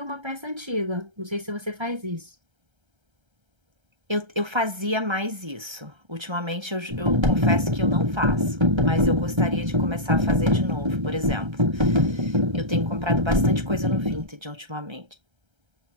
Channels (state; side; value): late; left; 1.3 ms